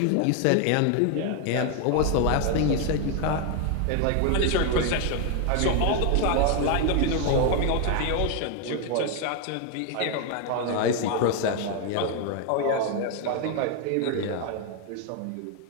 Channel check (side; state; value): both; different; correlation 0.01